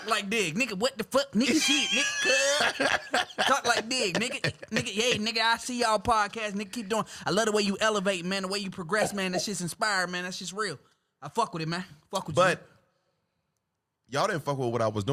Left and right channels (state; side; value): identical; both; correlation 1.00